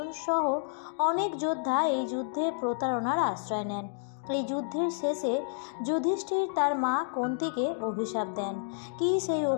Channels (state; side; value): silent; right; digital silence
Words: সহ অনেক যোদ্ধা এই যুদ্ধে প্রতারণার আশ্রয় নেন। এই যুদ্ধের শেষে যুধিষ্ঠির তার মা কুন্তিকে অভিশাপ দেন। কী সেই